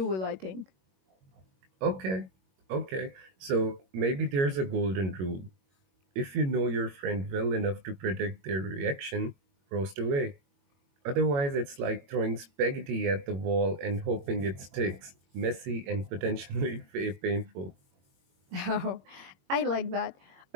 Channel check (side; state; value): left; late; 22 ms